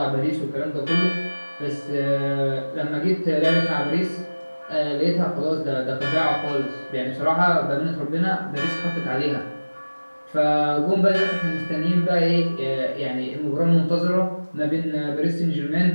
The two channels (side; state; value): both; inverted; correlation -1.00